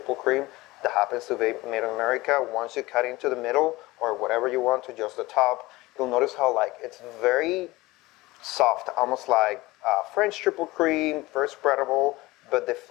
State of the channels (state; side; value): quieter; right; 20.2 dB